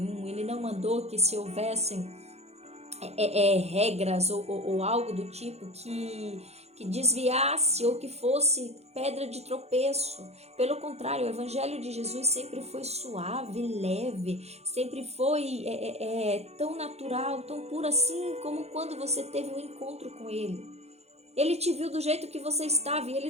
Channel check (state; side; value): late; left; 0.31 ms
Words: Ele não mandou que se houvessem regras ou algo do tipo que desviasse ou que fosse pedra de tropeço. Pelo contrário, o evangelho de Jesus sempre foi suave, leve, sempre foi tão natural, tão puro assim como quando você teve um encontro com ele. Ele te viu do jeito que você estava e ele